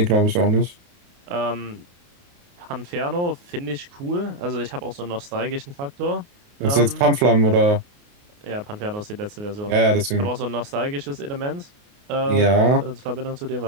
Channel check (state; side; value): late; left; 29 ms